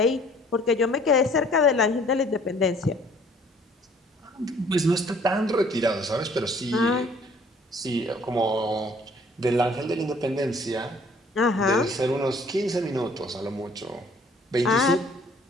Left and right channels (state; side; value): normal; both; correlation 0.57